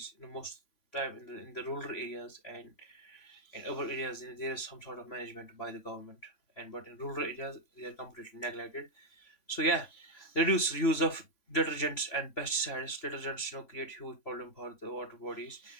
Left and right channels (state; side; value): late; right; 3.5 ms